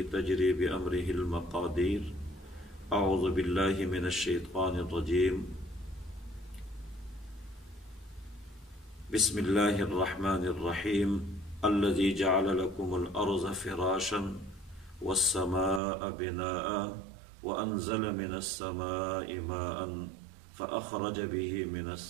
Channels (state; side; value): drops out; left; at 15.8 s